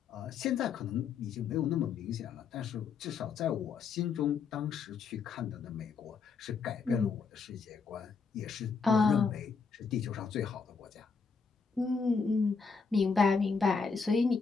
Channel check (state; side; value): quieter; right; 5.3 dB